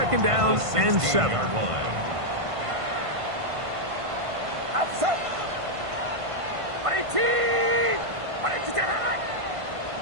down and 7. Outside. 18. 22.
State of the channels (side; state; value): left; late; 1.5 ms